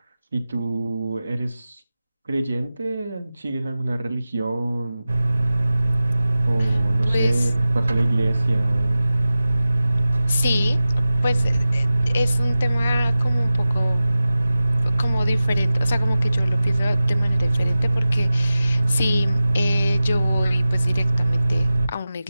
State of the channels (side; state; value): both; inverted; correlation -0.96